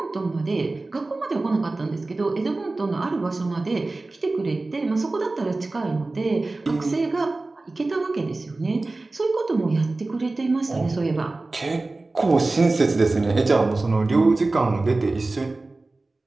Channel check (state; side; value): quieter; left; 3.2 dB